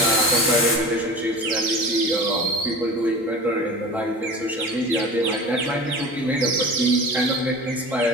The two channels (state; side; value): normal; both; correlation 0.36